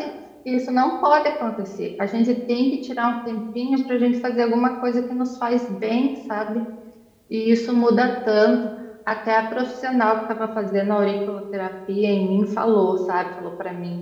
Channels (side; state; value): both; identical; correlation 1.00